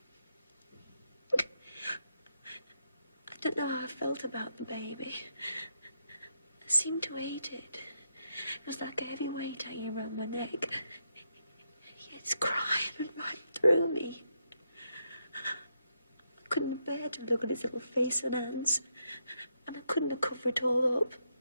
I don't know how I felt about the baby. I seemed to hate it. It was like a heavy weight hanging around my neck. It's crying right through me. I couldn't bear to look at his little face and hands, and I couldn't have covered it all up.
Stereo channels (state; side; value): inverted; both; correlation -0.80